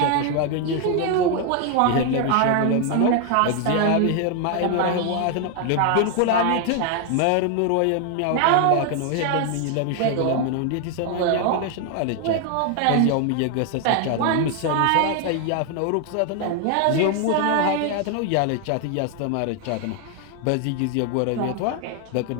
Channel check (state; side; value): different; both; correlation 0.00